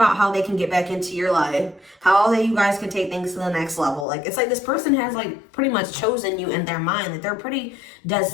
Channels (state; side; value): drops out; right; at 4.0 s